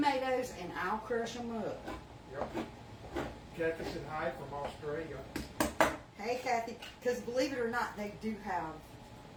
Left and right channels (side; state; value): both; identical; correlation 1.00